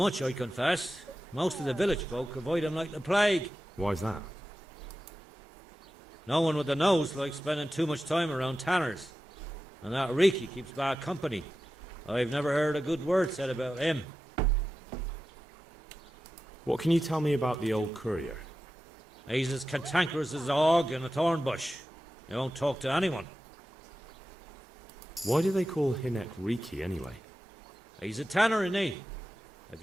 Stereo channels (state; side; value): normal; both; correlation 0.93